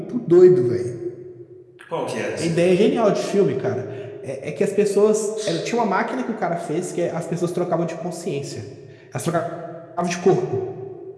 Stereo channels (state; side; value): identical; both; correlation 1.00